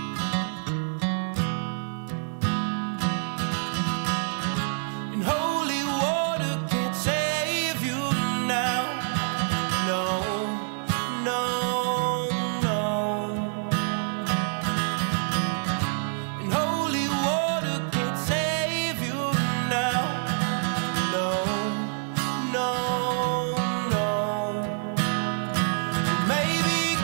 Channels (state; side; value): silent; left; 60 dB below the other